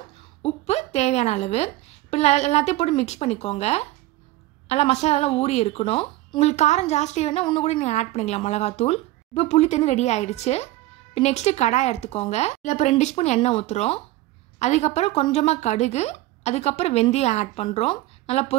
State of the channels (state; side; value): quieter; left; 17.2 dB